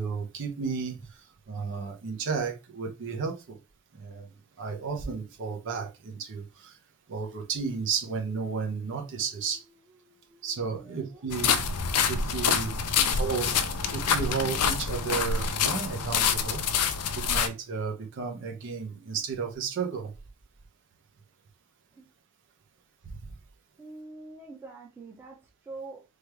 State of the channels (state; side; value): normal; both; correlation 0.17